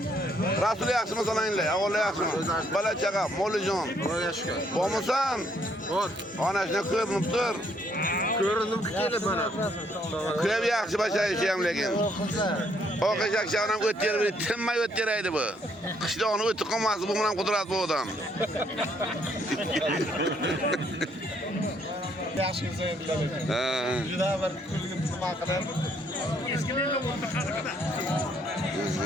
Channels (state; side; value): normal; both; correlation 0.69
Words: Rasul yaxshimi sananglar? Avval yaxshimi? Bola chaqa, molijon. Xudoga shukr. Bormisan? Bor. Onasini ko'rinib tur. Ko'rindim kelib mana. Ko'p yaxshi basharishi ham lekin. O'qish akşamdan o'ttirib, tinmay o'ttiraydi bu. Qishloqni o'tib qolmasdi, bu bilan qudrat bu odam. Yaxshimiz endi. Juda bir kulgim nima qilib. Eskilikni o'rta qadaqada.